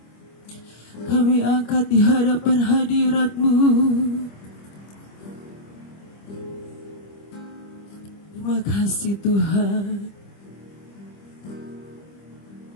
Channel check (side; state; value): right; late; 25 ms